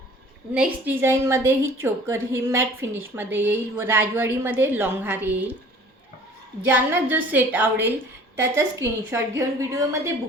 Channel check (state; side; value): normal; both; correlation 0.49